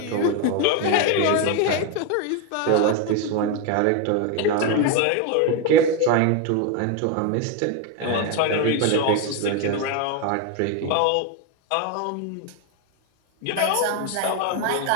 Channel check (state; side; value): different; both; correlation 0.02